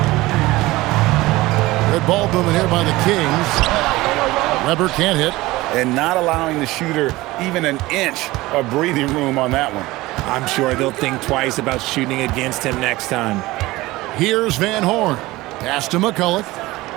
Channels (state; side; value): quieter; left; 19.3 dB